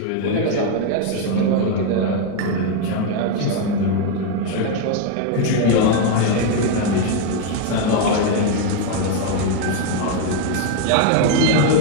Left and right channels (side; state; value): both; different; correlation 0.01